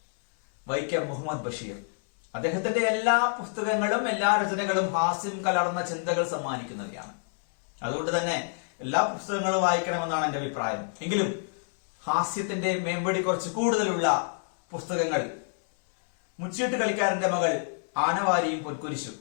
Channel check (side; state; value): right; silent; 60 dB below the other